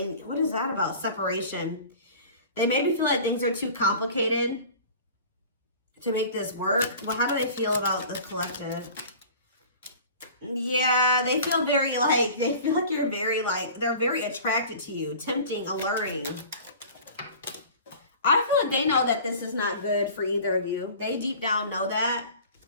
what is that about? Separation. They maybe feel like things are too complicated to make this work. Well, how do they feel about the collective? Yeah, they feel very like, they feel like you're very like, they're very attracted to you, tempting, alluring. I feel like they know that this is not good for either of you. They deep down know that.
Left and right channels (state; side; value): inverted; both; correlation -0.42